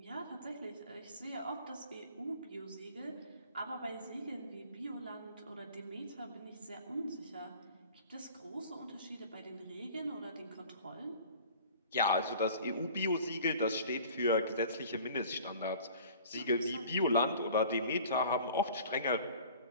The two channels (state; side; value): inverted; both; correlation -0.46